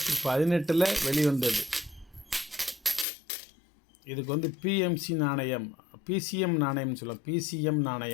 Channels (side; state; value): right; drops out; at 3.1 s